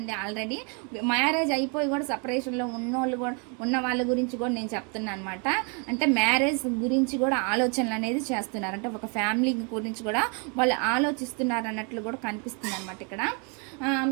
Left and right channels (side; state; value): left; quieter; 36.2 dB